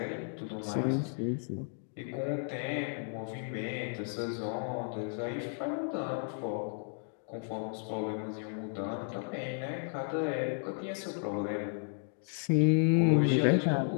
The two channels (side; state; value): right; silent; 55 dB below the other